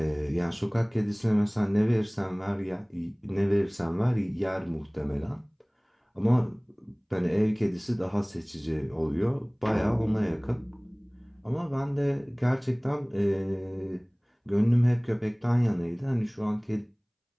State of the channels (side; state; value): both; identical; correlation 1.00